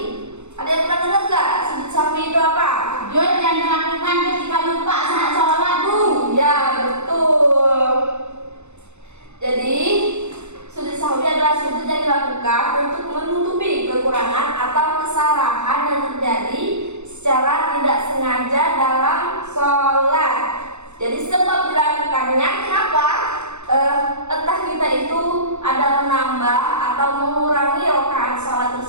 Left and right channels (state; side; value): late; left; 0.82 ms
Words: Ada yang pernah dengar nggak sujud sahwi itu apa? Sujud yang dilakukan ketika lupa saat sholat Bu. Ya, betul. Jadi sujud sahwi adalah sujud yang dilakukan untuk menutupi kekurangan atau kesalahan yang terjadi secara tidak sengaja dalam sholat. Jadi sebab dilakukannya kenapa? Entah kita itu ada menambah atau mengurangi rakaat sholat